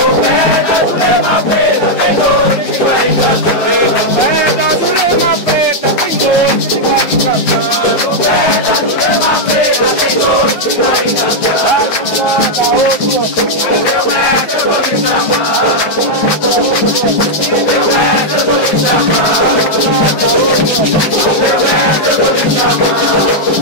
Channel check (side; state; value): right; late; 10 ms